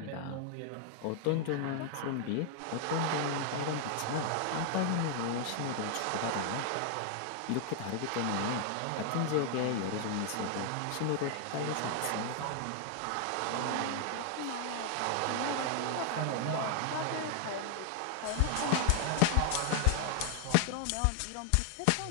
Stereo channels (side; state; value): both; different; correlation 0.00